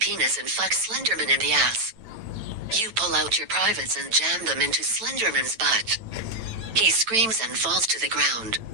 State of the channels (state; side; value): late; left; 9.0 ms